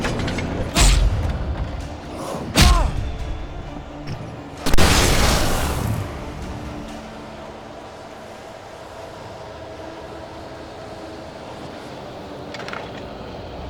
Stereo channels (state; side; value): identical; both; correlation 1.00